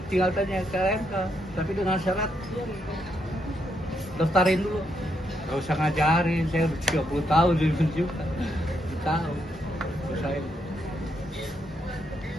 tinggal tanya ke LMK, tapi dengan syarat daftarin dulu. Gak usah ngajarin, saya udah 30 tahun jadi juga. Tahu. Terus saya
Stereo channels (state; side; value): normal; both; correlation 0.78